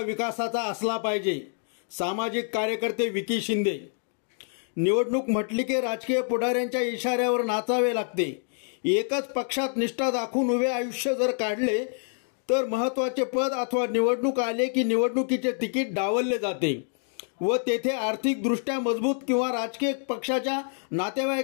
असला पाहिजे। सामाजिक कार्यकर्ते विकी शिंदे। निवडणूक म्हटली की राजकीय पुढाऱ्यांच्या इशाऱ्यावर नाचावे लागते। एकच पक्षात निष्ठा दाखवून उभे आयुष्य जर काढले तर महत्त्वाचे पद अथवा निवडणूक आले की निवडणुकीचे तिकीट डावलले जाते व तेथे आर्थिकदृष्ट्या मजबूत किंवा राजकीय पक्षाच्या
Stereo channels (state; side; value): silent; right; 57 dB below the other